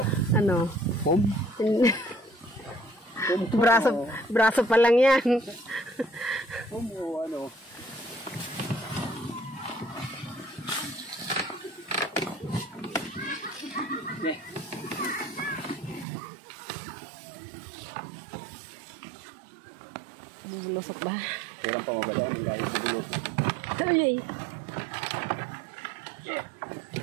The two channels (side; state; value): left; drops out; at 16.1 s